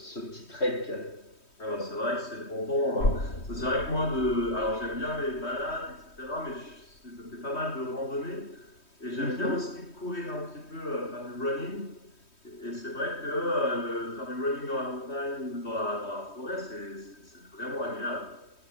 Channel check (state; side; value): late; right; 3.2 ms